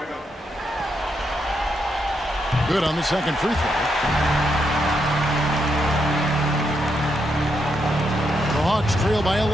Good on the second free throw. The Hawks trail by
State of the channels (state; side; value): normal; both; correlation 0.80